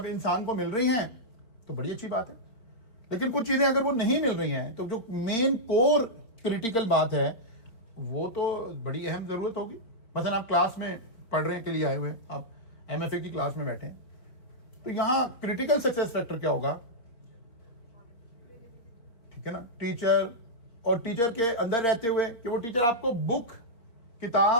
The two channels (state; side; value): late; right; 4.3 ms